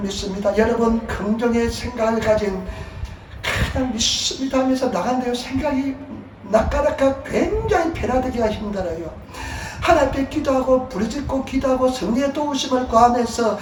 여러분 긍정의 생각을 가진 그냥 믿습니다 하면서 나간데요 생각이 낚아낚아 굉장히 변화되기가 힘들어요. 하나님께 기도하고 부르짖고 기도하고 성령의 도우심을 구하면서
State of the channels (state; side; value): identical; both; correlation 1.00